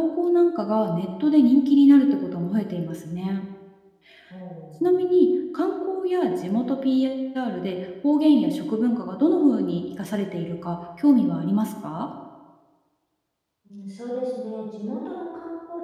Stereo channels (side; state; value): both; identical; correlation 1.00